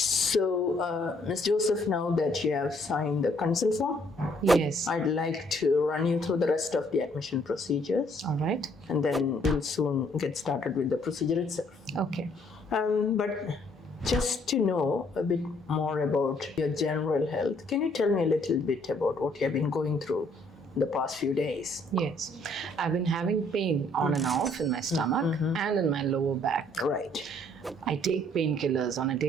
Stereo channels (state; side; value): normal; both; correlation 0.65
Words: Ms. Joseph, now that you have signed the consent form, Yes. I'd like to run you through the rest of the admission procedures, All right. and then we'll soon get started with the procedure itself. Okay. But just to know a bit more about your general health, can you tell me a little bit about what you have been going through the past few days? Yes. I've been having pain on and off in my stomach and in my lower back. Right. I take painkillers on a